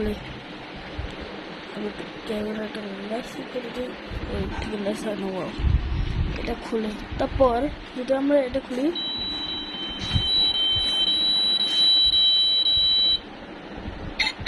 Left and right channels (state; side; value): identical; both; correlation 1.00